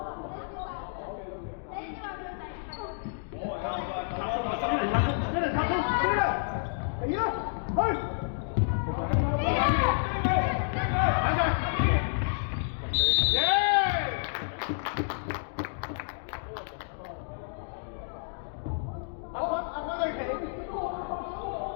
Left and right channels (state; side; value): silent; right; digital silence